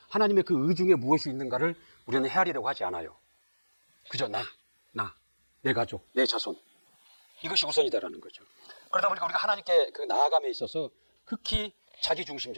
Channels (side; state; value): both; inverted; correlation -1.00